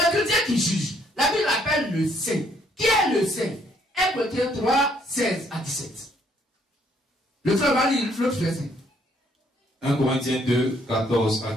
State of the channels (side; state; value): both; normal; correlation 0.67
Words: chrétien qui juge. La Bible l'appelle le saint. Qui est le saint? 1 Corinthiens 3, 16 à 17. Le frère va lire l'autre verset. 1 Corinthiens 2, 14 à